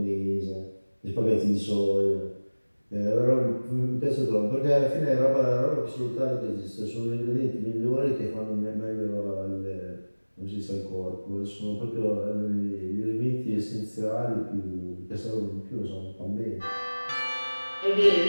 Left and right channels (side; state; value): both; inverted; correlation -1.00